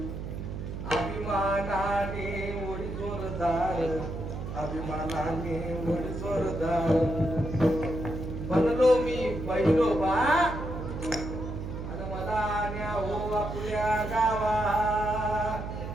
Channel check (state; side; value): noise; right; hum, 7 dB below the sound